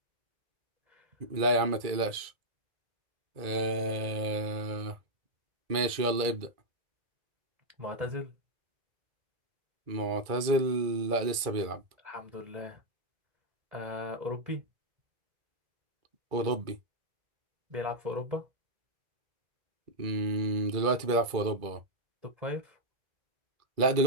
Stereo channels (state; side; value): late; left; 2.3 ms